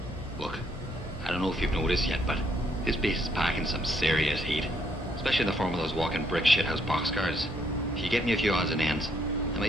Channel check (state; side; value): normal; both; correlation 0.71